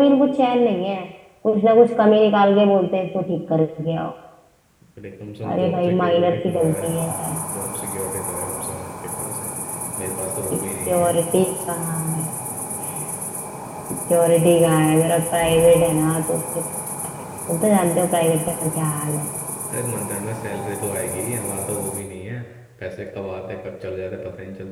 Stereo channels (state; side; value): identical; both; correlation 1.00